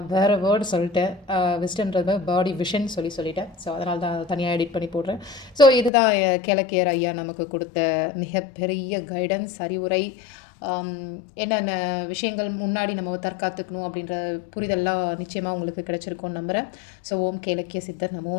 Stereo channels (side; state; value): right; drops out; at 5.9 s